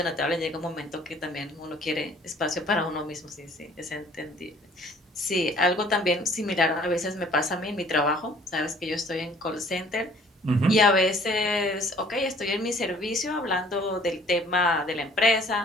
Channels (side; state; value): both; normal; correlation 0.55